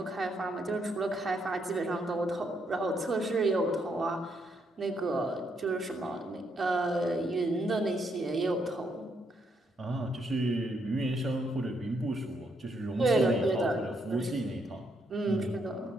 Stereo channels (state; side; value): normal; both; correlation 0.76